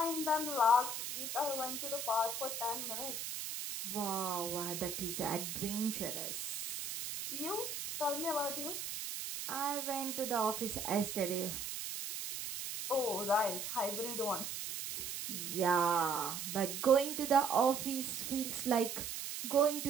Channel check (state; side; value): noise; right; hiss, 5 dB below the sound